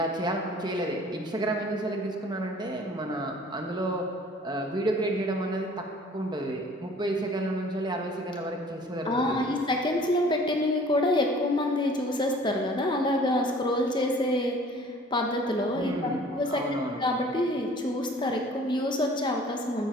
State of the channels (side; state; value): both; normal; correlation 0.51